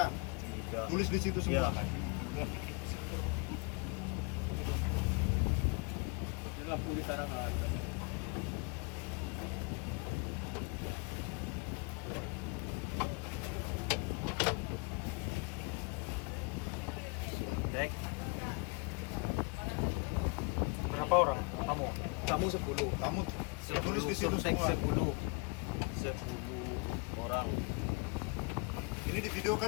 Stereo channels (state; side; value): quieter; right; 33.0 dB